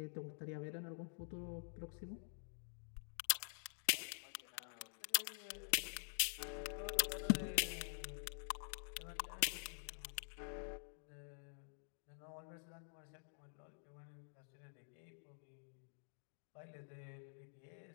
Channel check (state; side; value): silent; right; digital silence